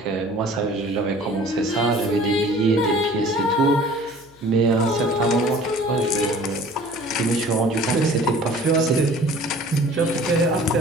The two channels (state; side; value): noise; left; hum, 27 dB below the sound